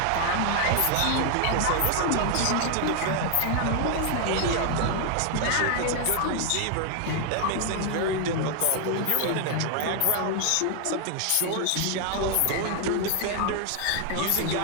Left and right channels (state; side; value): different; both; correlation 0.00